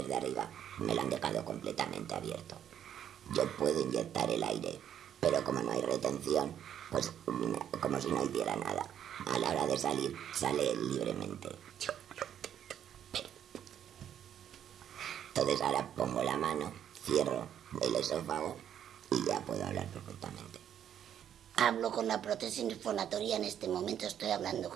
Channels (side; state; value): left; quieter; 9.7 dB